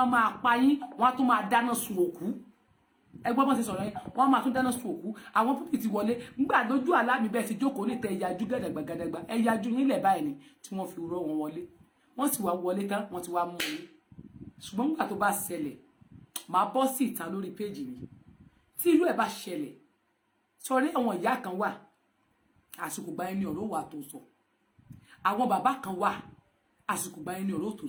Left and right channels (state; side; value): identical; both; correlation 1.00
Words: máa pa yín wọ́n á tún máa dáná sun òkú ẹgbọ́n bọ́n ṣe sọ̀rọ̀ yẹn wọ́n máa tún dáná sun òkú àwọn púpì ti wọlé ńgbà lójú àlámì bẹ́ẹ̀ ti jókòó lè tẹ ẹ̀yájú gàdàgbàgàdàgbà ẹ̀yájú yín lẹ̀ báyìí ni tí wọ́n fi rọ́ wọn wọlé wọ́n sì wá wọlé tán wọ́n ti wá mú yín ṣùgbọ́n nígbà tó bá ṣẹlẹ̀ máa bọ́ sí ìta lórí péjì mi tí irú ẹ̀ bá ṣẹlẹ̀ sọrí àwọn ìyá kan wà àsìkò gba ẹni ọ̀rọ̀ wà tó sọ àwọn bàbá kan wà àsìkò gba ẹni ọ̀rọ̀ tó